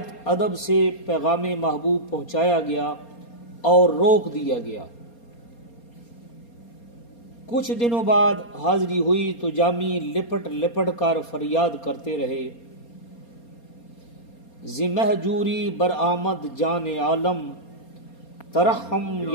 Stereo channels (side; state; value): right; late; 4.3 ms